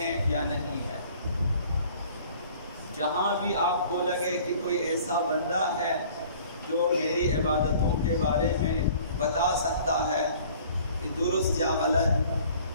ہیں یا نہیں ہے۔ جہاں بھی آپ کو لگے کہ کوئی ایسا بندہ ہے جو میری عبادتوں کے بارے میں بتا سکتا ہے کہ درست یا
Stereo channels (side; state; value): both; inverted; correlation -0.52